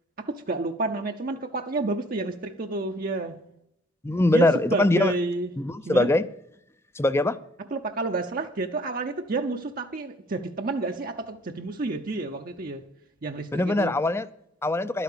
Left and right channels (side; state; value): both; normal; correlation 0.60